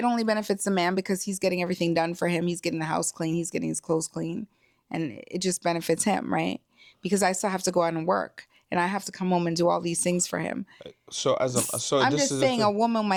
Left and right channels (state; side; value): identical; both; correlation 1.00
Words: only benefits the man because he's getting everything done for him. He's getting the house clean. He's getting his clothes clean. And it just benefits him, right? Because I still have to go out and work. And I have to come home and do all these things for him. So I'm this just is the saying a thing. woman